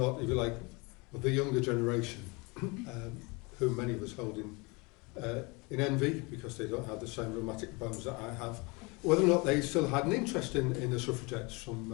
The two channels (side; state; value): right; quieter; 27.7 dB